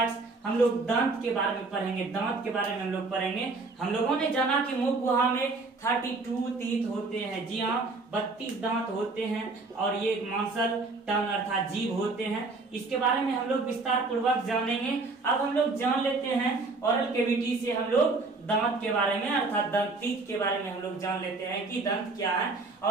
हम लोग दांत के बारे में पढ़ेंगे, दांत के बारे में हम लोग पढ़ेंगे। हम लोगों ने जाना कि मुख गुहा में 32 टीथ होते हैं। जी हाँ, 32 दांत होते हैं और ये मांसल, टंग अर्थात जीभ होते हैं। इसके बारे में हम लोग विस्तार पूर्वक जानेंगे। अब हम लोग जान लेते हैं ओरल कैविटी से, हम लोग दांत के बारे में अर्थात दंत, टीथ के बारे में हम लोग जान लेते हैं कि दंत क्या है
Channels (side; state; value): left; quieter; 3.6 dB